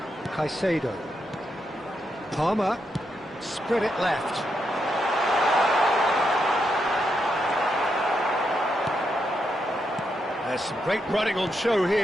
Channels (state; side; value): normal; both; correlation 0.82